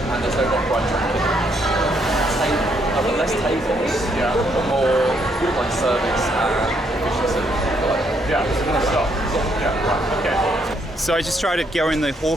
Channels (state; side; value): normal; both; correlation 0.72